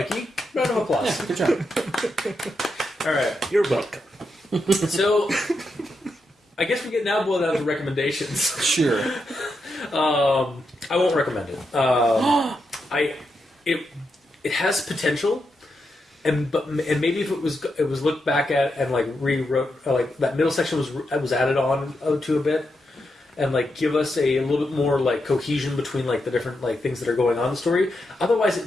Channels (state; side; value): normal; both; correlation 0.85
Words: Round of applause. Yeah, good job. All right. You're welcome. So, I guess we get now boiled down to recommendations. Sure. I won't recommend it. It has potential, and maybe if it was looked back at and like rewrote, like that middle section was added on to a bit. And like give us a little bit more like cohesion between like the different like things that are going on in the story. Otherwise,